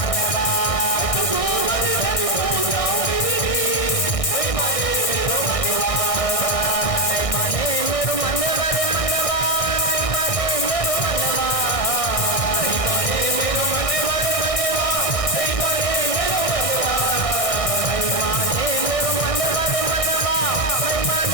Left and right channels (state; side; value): late; right; 1.6 ms